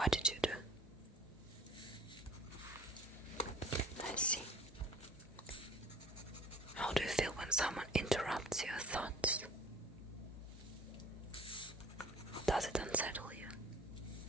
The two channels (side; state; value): both; normal; correlation 0.49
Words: did you do? I see. How do you feel when someone interrupts your thoughts? Does it unsettle you?